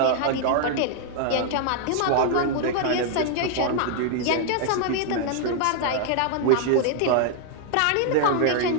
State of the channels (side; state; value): both; different; correlation 0.00